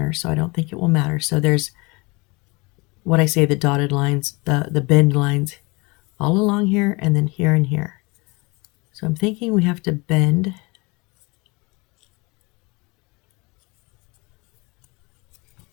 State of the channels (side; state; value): right; quieter; 26.5 dB